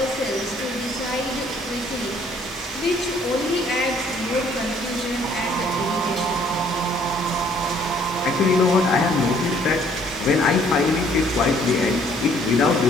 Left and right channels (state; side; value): normal; both; correlation 0.62